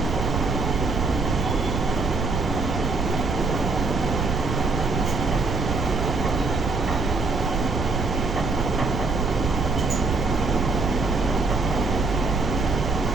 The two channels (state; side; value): noise; right; rumble, 2 dB below the sound